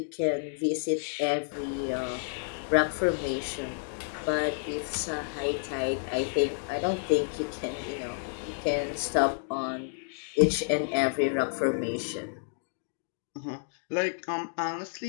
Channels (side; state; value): right; silent; 58 dB below the other